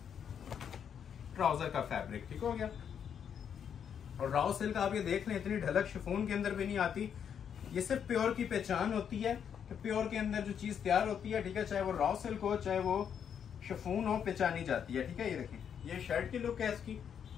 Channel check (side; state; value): right; quieter; 8.1 dB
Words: ट्राउजर का फैब्रिक, ठीक हो गया। और रॉ सिल्क आप ये देख लें, इतनी ढलक शिफॉन के अंदर भी नहीं आती। ये सिर्फ प्योर की पहचान होती है कि प्योर के अंदर जो चीज तैयार होती है, ठीक है, चाहे वो रॉ सिल्क हो चाहे वो शिफॉन हो, पहचानी जाती है, ठीक है। ये देखिए, ये शर्ट की लुक है इसकी,